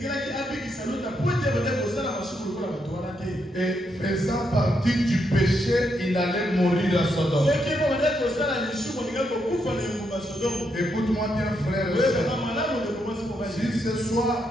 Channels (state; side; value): normal; both; correlation 0.79